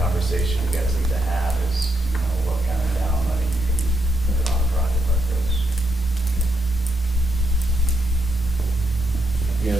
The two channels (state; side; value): normal; both; correlation 0.80